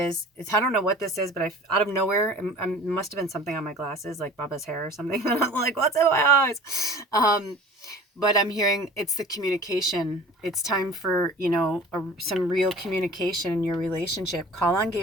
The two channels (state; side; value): normal; both; correlation 0.43